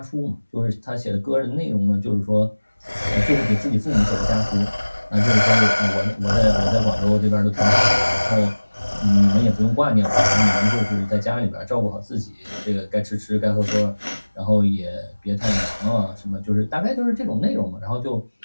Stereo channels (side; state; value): both; inverted; correlation -1.00